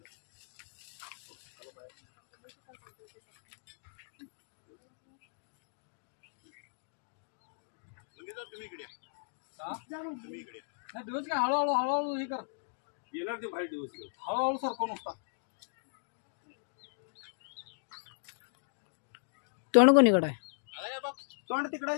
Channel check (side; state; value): right; silent; digital silence